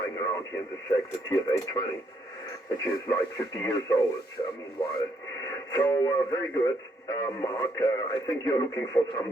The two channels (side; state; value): both; normal; correlation 0.73